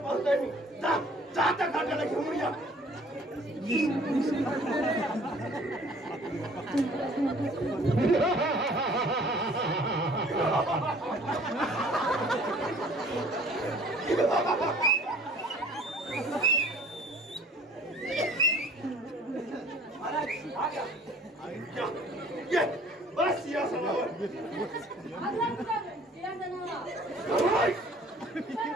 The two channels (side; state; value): both; normal; correlation 0.53